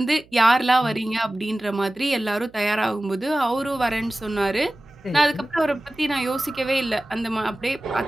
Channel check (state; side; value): noise; right; hum, 28 dB below the sound